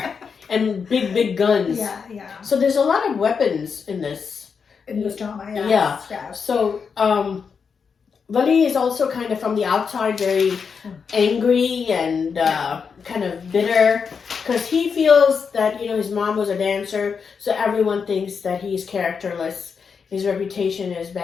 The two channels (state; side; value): quieter; right; 6.0 dB